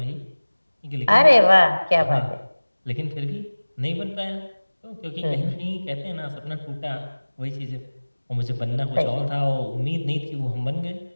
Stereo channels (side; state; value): both; inverted; correlation -1.00